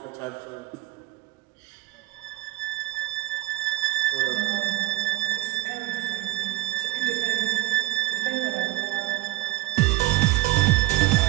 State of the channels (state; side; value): quieter; left; 18.0 dB